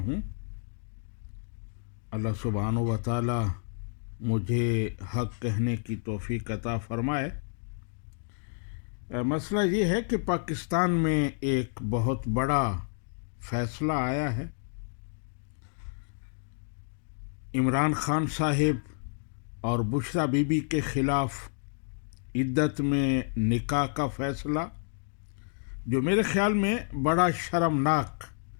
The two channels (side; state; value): right; silent; digital silence